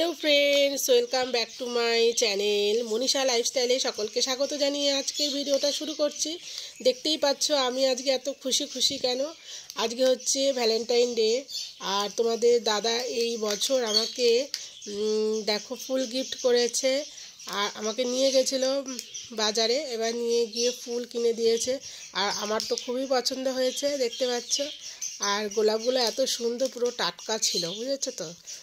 friends, welcome back to my channel Manisha লাইফস্টাইলে সকলকে স্বাগত জানিয়ে আজকের ভিডিওটা শুরু করছি। দেখতেই পাচ্ছ আমি আজকে এত খুশি কেন। আজকে হচ্ছে ভ্যালেন্টাইন ডে, আর তোমাদের দাদা এই বছর আমাকে দেখো ফুল গিফট করেছে। আর আমাকে নিয়ে গেছিলো বাজারে, এবার নিয়ে গিয়ে ফুল কিনে দিয়েছে। আর আমার তো খুবই পছন্দ হয়েছে, দেখতে পাচ্ছ। আর গোলাপগুলো এত সুন্দর, পুরো টাটকা ছিল, বুঝেছো তো,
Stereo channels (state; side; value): identical; both; correlation 1.00